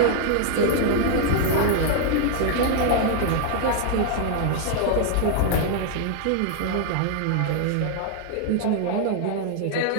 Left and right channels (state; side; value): different; both; correlation 0.00